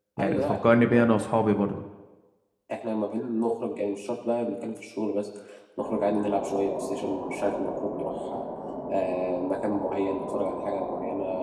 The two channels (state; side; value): identical; both; correlation 1.00